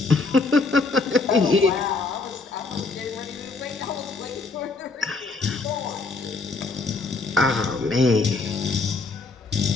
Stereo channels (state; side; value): quieter; right; 3.9 dB